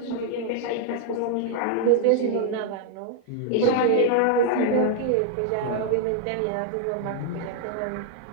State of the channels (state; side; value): different; both; correlation 0.00